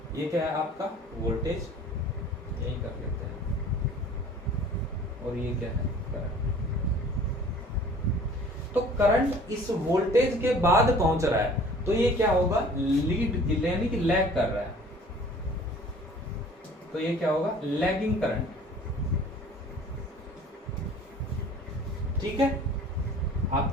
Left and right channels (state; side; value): normal; both; correlation 0.49